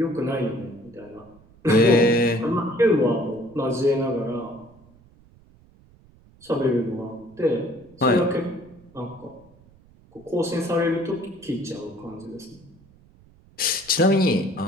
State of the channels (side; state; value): right; noise; rumble, 27 dB below the sound